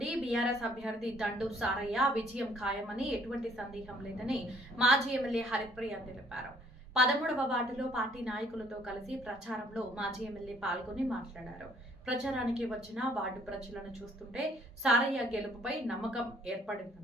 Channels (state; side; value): normal; both; correlation 0.62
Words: బీఆర్ఎస్ అభ్యర్థి దండు సారయ్య విజయం ఖాయమని ఎటువంటి సందేహం లేదని మాజీ ఎమ్మెల్యే హరిప్రియ తెలిపారు. 13వ వార్డులో పార్టీ నాయకులతో కలిసి ప్రచారంలో మాజీ ఎమ్మెల్యే పాల్గొని మాట్లాడారు. ప్రచారానికి వచ్చిన వార్డు ప్రజలను చూస్తుంటే సారయ్య గెలుపుపై నమ్మకం